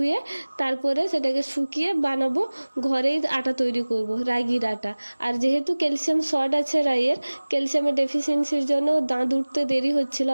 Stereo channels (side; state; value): both; inverted; correlation -1.00